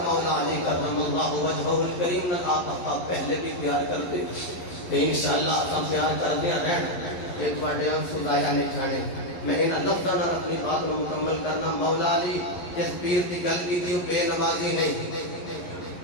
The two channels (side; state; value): right; late; 11 ms